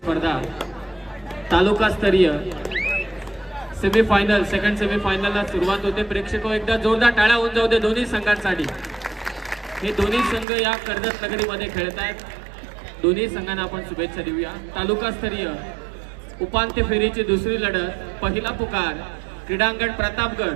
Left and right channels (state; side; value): drops out; left; at 10.5 s